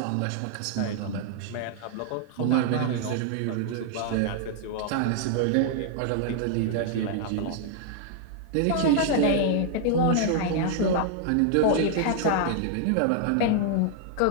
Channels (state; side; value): different; both; correlation 0.00